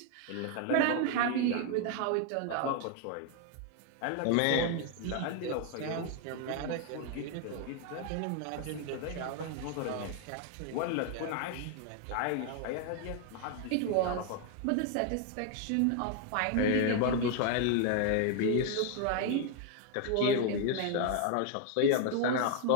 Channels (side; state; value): both; different; correlation 0.01